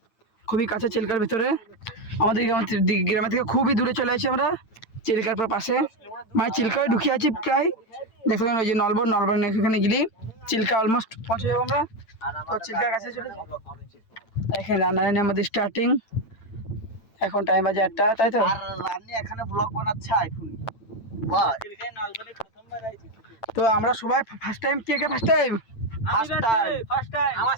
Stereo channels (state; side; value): late; right; 8.9 ms